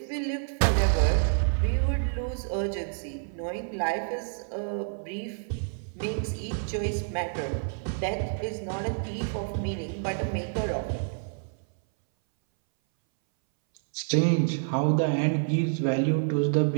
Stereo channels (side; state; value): left; silent; 59 dB below the other